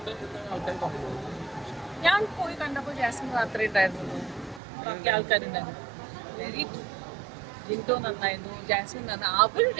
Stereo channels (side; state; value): left; drops out; at 4.6 s